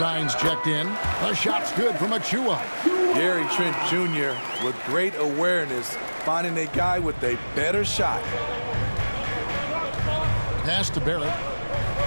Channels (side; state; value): both; inverted; correlation -1.00